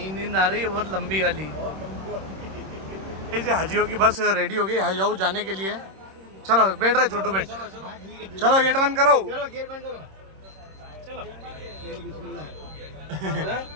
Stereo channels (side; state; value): left; late; 26 ms